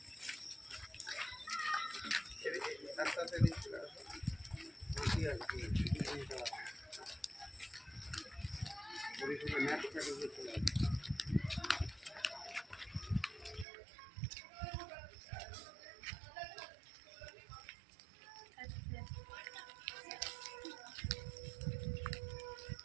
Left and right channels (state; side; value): drops out; left; at 13.7 s